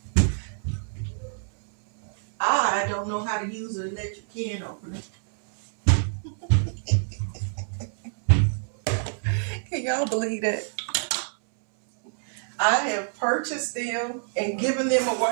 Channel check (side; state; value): left; silent; 61 dB below the other